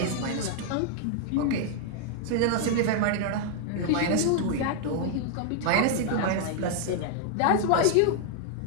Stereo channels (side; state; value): both; different; correlation 0.00